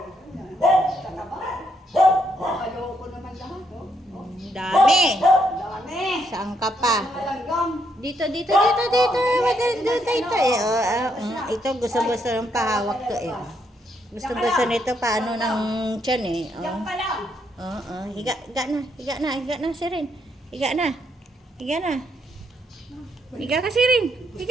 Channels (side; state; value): both; normal; correlation 0.75